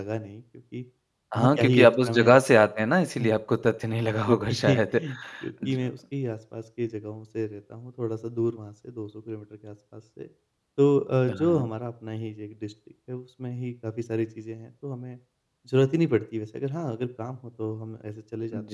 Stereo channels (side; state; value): both; identical; correlation 1.00